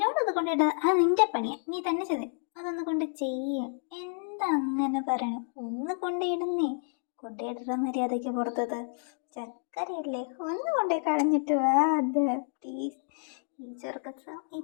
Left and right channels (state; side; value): silent; right; 58 dB below the other